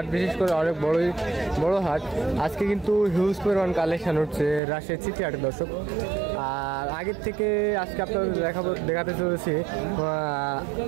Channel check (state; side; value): drops out; left; at 4.6 s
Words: বিশেষ করে অনেক বড় হাট। আজকে কিন্তু হিউজ পরিমাণ কালেকশন হচ্ছে রাজশাহী সিটি হাটে। দর্শক, আর আগের থেকে আজকে আপনাদের দেখাতে চলেছি